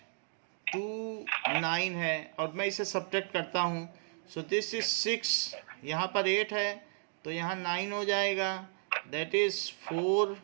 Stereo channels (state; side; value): silent; left; 55 dB below the other